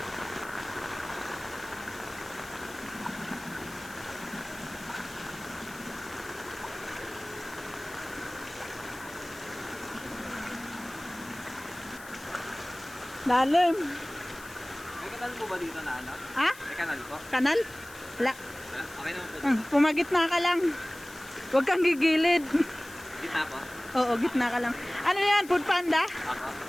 Lalim. May kanal po ba dito na ano? Ha? May kanal po? Kanal? Wala. Wala? Okay naman po. Pumagitna ka lang. Huwag kang gigilid. Gitna po? Oo, gitna ka lang. Ano yan? Food panda? Ako?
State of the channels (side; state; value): left; noise; hiss, 18 dB below the sound